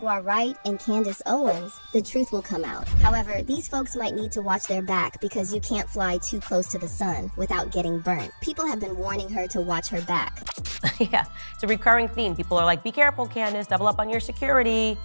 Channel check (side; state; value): both; inverted; correlation -1.00